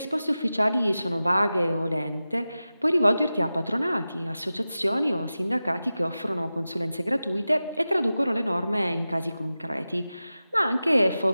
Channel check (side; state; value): both; inverted; correlation -0.94